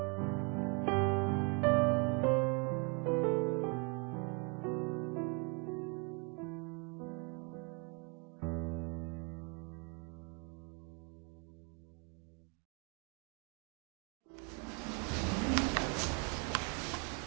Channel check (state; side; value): quieter; left; 33.5 dB